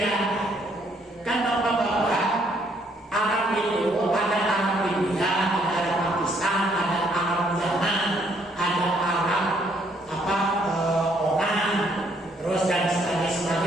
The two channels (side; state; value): both; normal; correlation 0.68